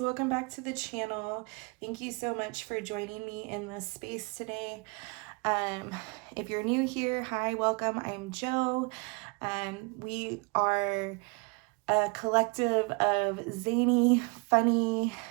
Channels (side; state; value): left; quieter; 31.5 dB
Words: welcome back to the channel. Thank you so much for joining me in this space today. If you're new here, hi, welcome. I'm Jo. We are a collective of zany, funny,